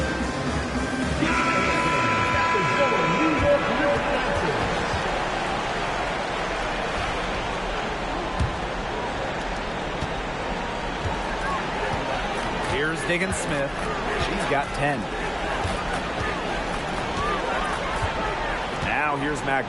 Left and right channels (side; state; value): both; identical; correlation 1.00